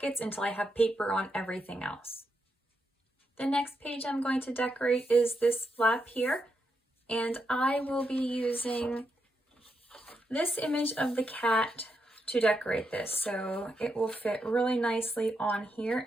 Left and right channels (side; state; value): both; normal; correlation 0.83